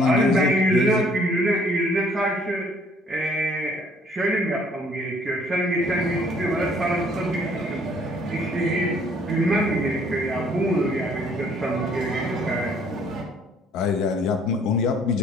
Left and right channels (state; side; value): normal; both; correlation 0.60